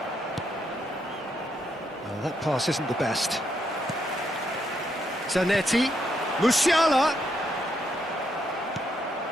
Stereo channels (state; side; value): normal; both; correlation 0.77